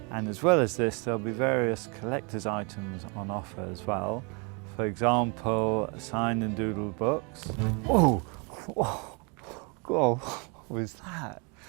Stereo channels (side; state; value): left; quieter; 33.1 dB